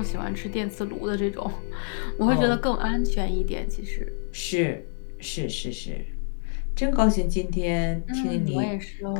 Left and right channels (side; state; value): right; silent; digital silence